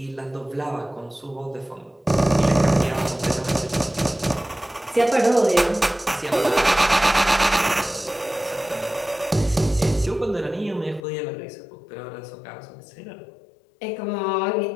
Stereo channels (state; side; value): drops out; right; at 11.1 s